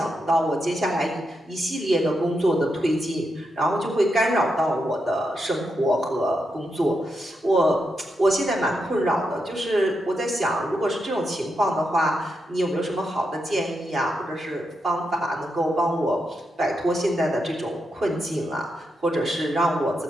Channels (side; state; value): both; normal; correlation 0.84